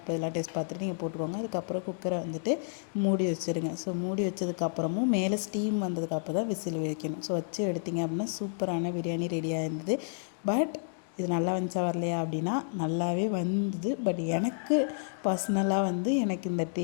இதெல்லாம் டேஸ்ட் பார்த்துட்டு நீங்கள் போட்டுக்கோங்க. அதுக்கப்புறம் குக்கரை மூடி வச்சுருங்க. ஸோ மூடி வச்சதுக்கப்புறமும் மேலே ஸ்டீம் வந்ததுக்கப்புறம் தான் விசில் வைக்கணும். ஸோ வச்சு எடுத்திங்க அப்படின்னா சூப்பரான பிரியாணி ரெடியாக இருந்தது. பட் இது நல்லா வந்துச்சா வரலையா அப்படின்னா நல்லாவே வந்தது. பட் எனக்கு பர்சனலாக எனக்கு இந்த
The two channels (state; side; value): silent; right; digital silence